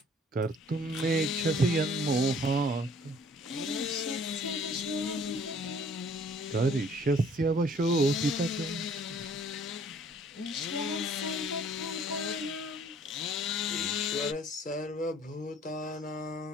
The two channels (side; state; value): both; normal; correlation 0.56